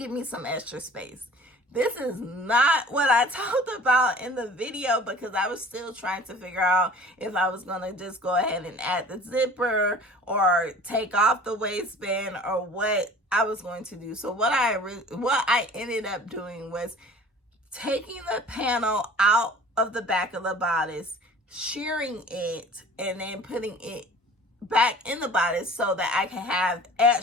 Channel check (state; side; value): normal; both; correlation 0.45